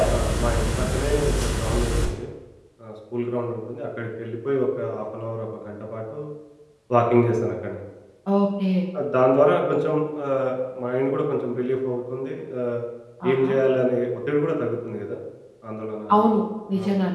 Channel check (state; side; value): identical; both; correlation 1.00